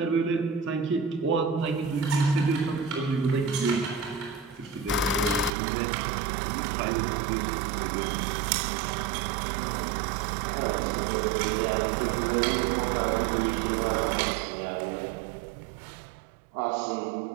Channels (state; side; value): drops out; left; at 5.5 s